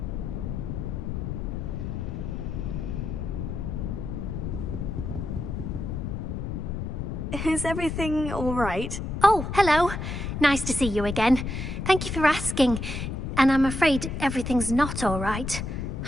Is everything all right? Oh, hello. Nice to see you again. Thank you for asking. And I'm afraid everything's not all right.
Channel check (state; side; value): noise; left; rumble, 4 dB below the sound